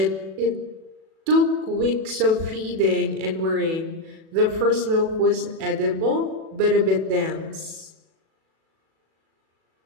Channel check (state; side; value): late; left; 37 ms